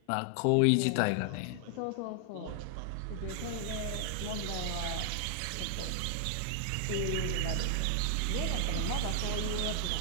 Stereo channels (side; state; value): both; different; correlation 0.00